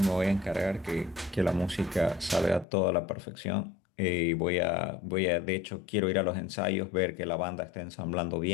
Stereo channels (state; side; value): drops out; right; at 2.7 s